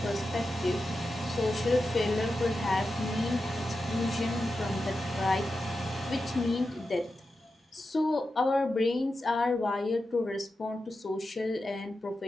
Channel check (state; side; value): normal; both; correlation 0.90